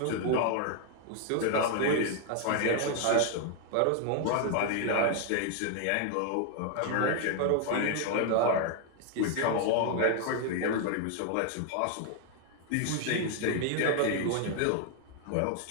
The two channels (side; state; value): both; different; correlation 0.00